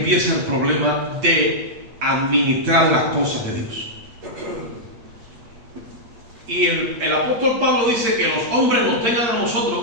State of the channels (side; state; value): left; late; 8.7 ms